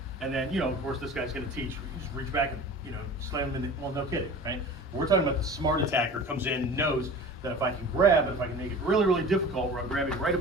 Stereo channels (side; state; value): both; normal; correlation 0.38